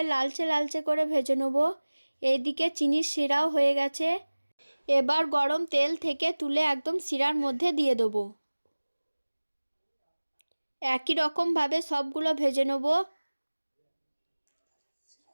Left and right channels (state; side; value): inverted; both; correlation -1.00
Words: লালচে লালচে করে ভেজে নেব। এইদিকে চিনির শিরাও হয়ে গেছে। এবার গরম তেল থেকে তুলে একদম শিরার মধ্যে দিয়ে দেবো। একই রকমভাবে সবগুলো ভেজে নেব